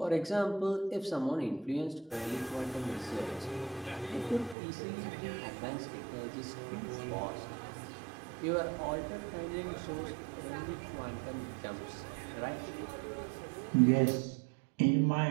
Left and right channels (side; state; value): left; drops out; at 4.5 s